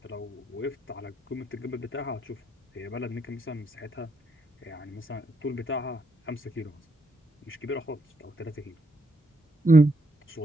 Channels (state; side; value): normal; both; correlation 0.78